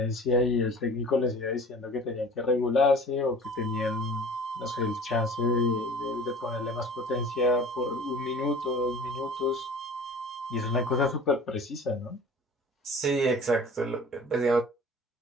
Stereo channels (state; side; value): normal; both; correlation 0.43